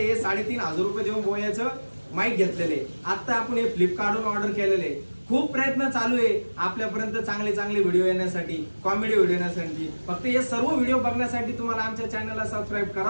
3,500 रुपये देऊन बोयाचं माईक घेतलेले. आता आपण हे फ्लिपकार्टवरून ऑर्डर केलेले. खूप प्रयत्न चालू आहे आपल्यापर्यंत चांगले व्हिडिओ येण्यासाठी, कॉमेडी व्हिडिओ येण्यासाठी. फक्त हे सर्व व्हिडिओ बघण्यासाठी तुम्हाला आमच्या चॅनलला सबस्क्राईब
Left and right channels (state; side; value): inverted; both; correlation -1.00